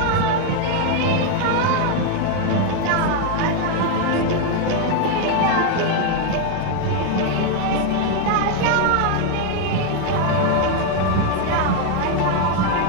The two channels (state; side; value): different; both; correlation 0.01